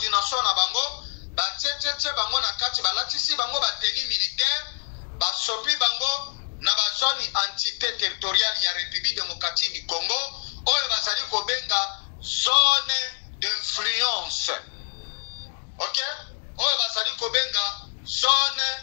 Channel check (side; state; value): right; silent; digital silence